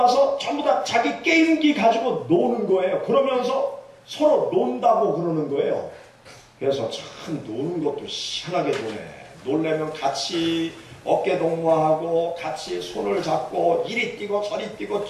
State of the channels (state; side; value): identical; both; correlation 1.00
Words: 전부 다 자기 게임기 가지고 노는 거예요. 그러면서 서로 논다고 그러는 거예요. 그래서 참 노는 것도 희한하게 노네. 놀려면 같이 어깨 동무하고 같이 손을 잡고 이리 뛰고 저리 뛰고